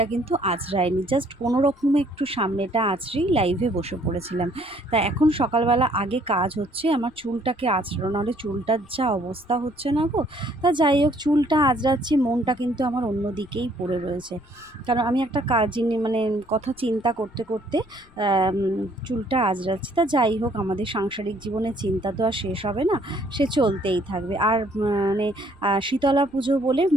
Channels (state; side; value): noise; left; rumble, 28 dB below the sound